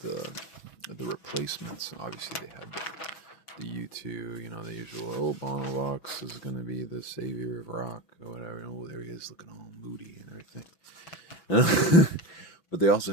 replacements. Obviously, they had the U2, the usual, Bono Rocks is going to be the savior of rock, or whatever. There he is looking all moody and everything. But they also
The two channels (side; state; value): right; late; 6.1 ms